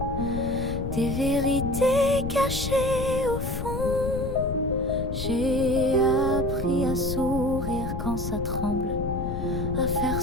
des vérités cachées au fond. J'ai appris à sourire quand ça tremble, à faire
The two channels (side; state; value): left; noise; rumble, 4 dB below the sound